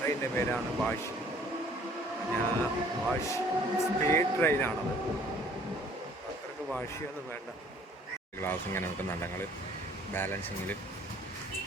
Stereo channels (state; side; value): normal; both; correlation 0.57